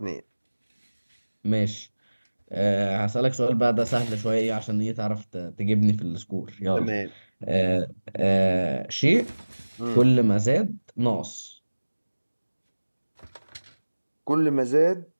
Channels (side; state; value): both; inverted; correlation -1.00